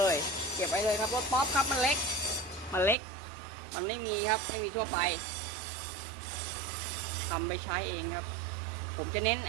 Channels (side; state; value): left; drops out; at 3.0 s